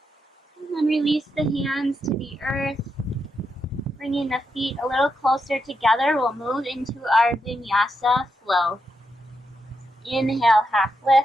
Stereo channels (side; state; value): both; normal; correlation 0.83